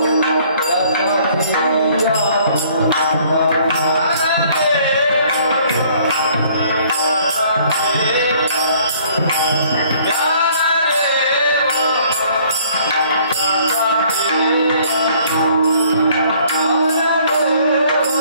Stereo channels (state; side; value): inverted; both; correlation -0.59